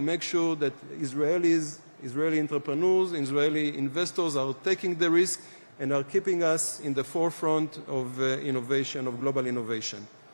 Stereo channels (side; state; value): both; inverted; correlation -1.00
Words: make sure that Israeli entrepreneurs, Israeli investors are taking the risk and are keeping us in the forefront of innovation, of global innovation.